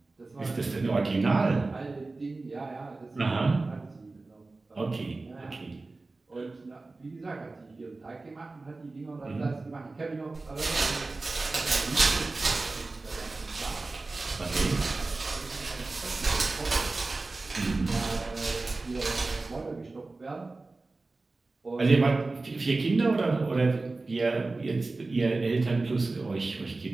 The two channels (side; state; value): left; quieter; 3.4 dB